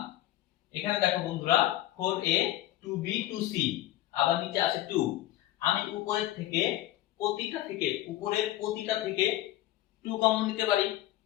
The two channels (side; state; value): right; quieter; 14.7 dB